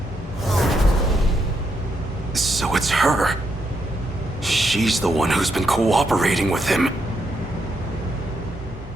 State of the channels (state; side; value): normal; both; correlation 0.79